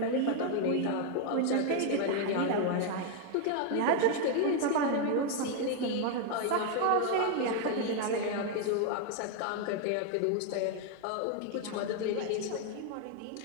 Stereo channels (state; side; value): different; both; correlation 0.01